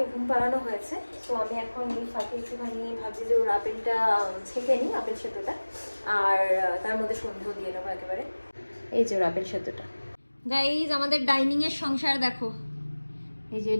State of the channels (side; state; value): both; inverted; correlation -1.00